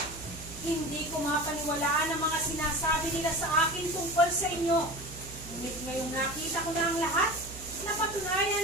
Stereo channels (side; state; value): right; noise; hum, 14 dB below the sound